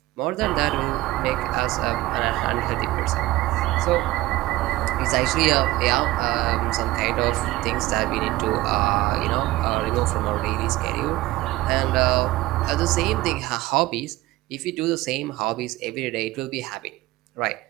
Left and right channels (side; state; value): left; quieter; 17.8 dB